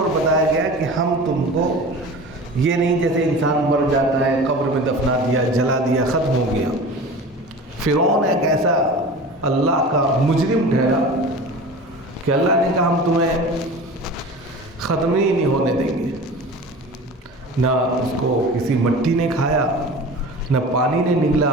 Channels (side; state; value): both; normal; correlation 0.36